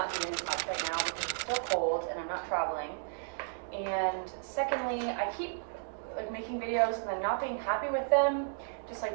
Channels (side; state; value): left; silent; digital silence